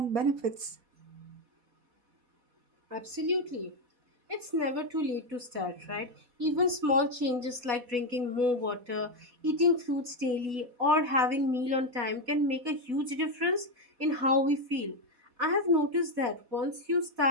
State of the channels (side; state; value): left; late; 4.1 ms